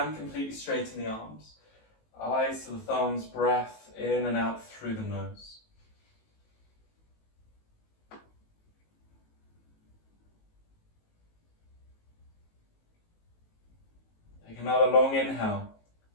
completely straighten the arms. Eyes to the thumbs, breath in and out through the nose. Take another long inhale,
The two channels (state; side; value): late; right; 18 ms